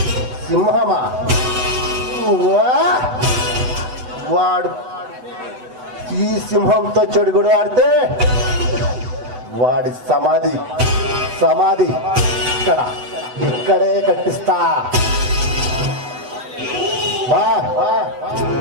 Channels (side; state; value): left; late; 7.9 ms